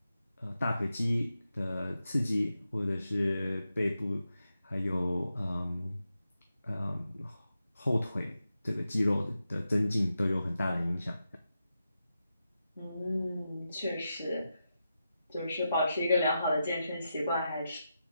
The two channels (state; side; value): inverted; both; correlation -0.89